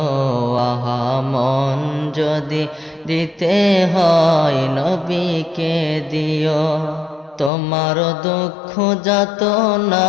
আহা মন যদি দিতে হয় নবীকে দিও। তোমার দুঃখ যাতনা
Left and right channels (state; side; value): drops out; right; at 7.5 s